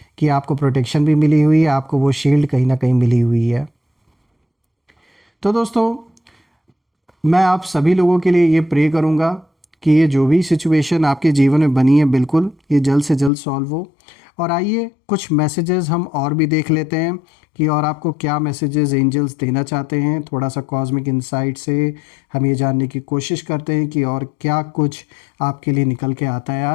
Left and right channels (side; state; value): right; drops out; at 13.3 s